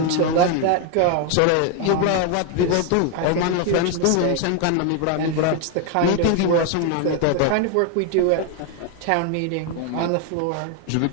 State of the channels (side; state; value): both; different; correlation 0.01